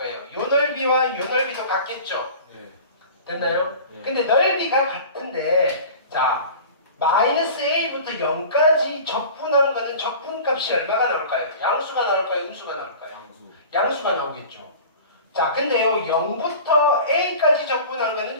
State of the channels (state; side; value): inverted; both; correlation -0.40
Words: 요 넓이와 요 넓이도 같겠죠. 네. 됐나요? 네. 근데 넓이가 같은데 자 마이너스 a부터 0까지 적분한 거는 적분값이 얼마가 나올까요? 양수가 나올까요? 음수가 나올까요? 양수. 양수가 나오겠죠. 자 근데요 0부터 a까지 적분한 거는